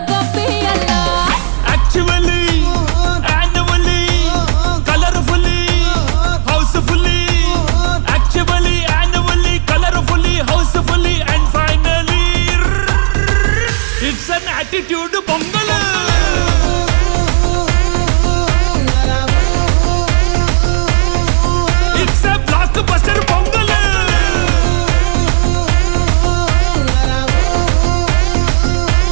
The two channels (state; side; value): silent; left; digital silence